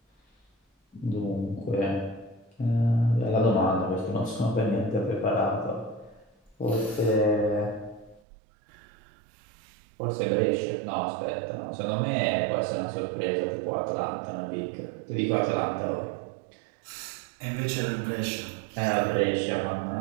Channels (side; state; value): left; drops out; at 8.2 s